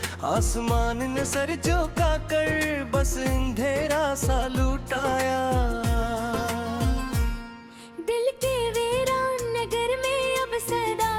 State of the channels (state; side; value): identical; both; correlation 1.00